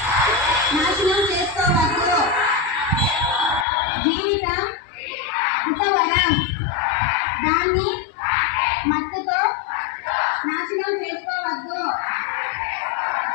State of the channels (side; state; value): right; drops out; at 3.7 s